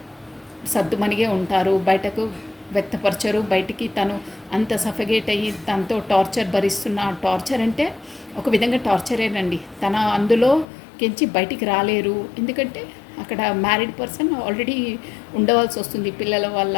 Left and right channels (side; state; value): right; drops out; at 10.7 s